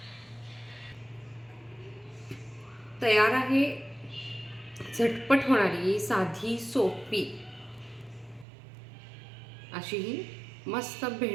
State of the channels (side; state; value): left; drops out; at 8.5 s